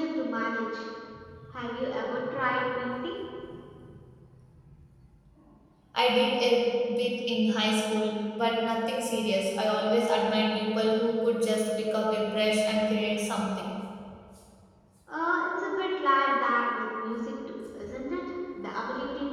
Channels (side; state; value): both; identical; correlation 1.00